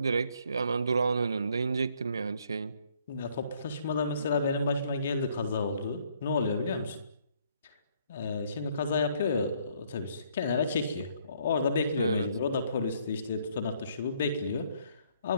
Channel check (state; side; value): inverted; both; correlation -0.66